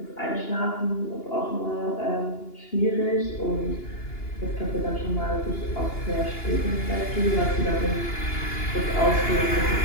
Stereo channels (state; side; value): late; right; 2.9 ms